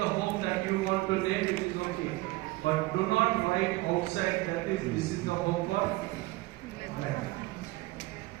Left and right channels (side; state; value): left; quieter; 20.6 dB